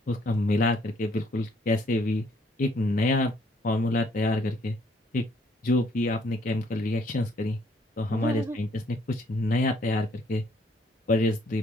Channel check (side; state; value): both; normal; correlation 0.65